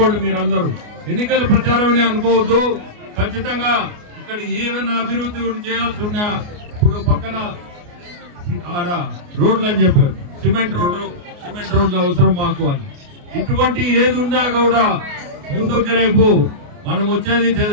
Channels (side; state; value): left; late; 29 ms